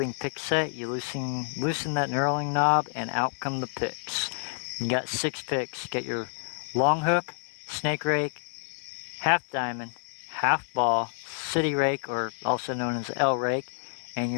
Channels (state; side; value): silent; right; 59 dB below the other